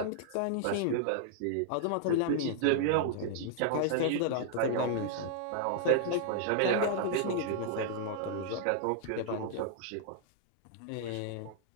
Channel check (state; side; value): different; both; correlation -0.01